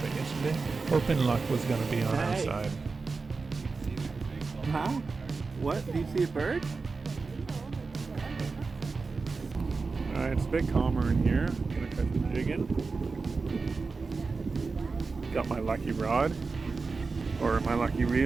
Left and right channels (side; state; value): left; quieter; 4.3 dB